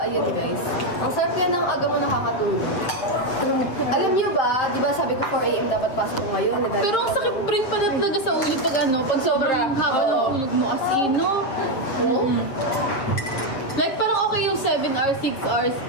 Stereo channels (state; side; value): late; right; 7.5 ms